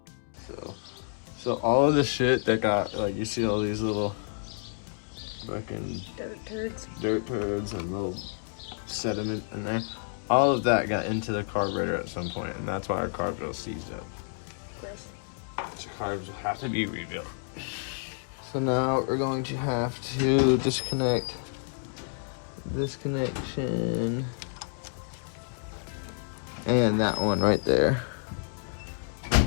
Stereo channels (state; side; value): silent; right; 58 dB below the other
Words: So all of the shit that got, like, you see all these little fucking dirt turds and little sediment in there. All of that got into the carburetor at some point, and that's why our carburetor was seized up. So carbs have to be rebuilt. So now we're going to have to disconnect this connection and that one right there.